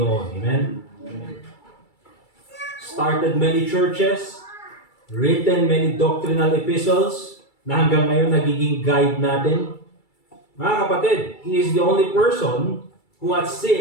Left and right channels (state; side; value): late; right; 2.3 ms